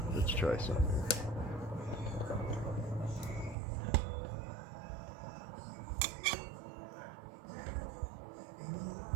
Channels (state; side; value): drops out; left; at 3.6 s